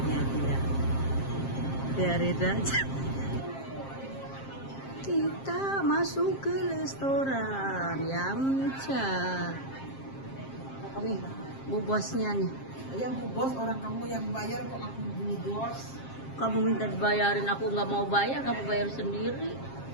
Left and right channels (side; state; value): right; late; 7.5 ms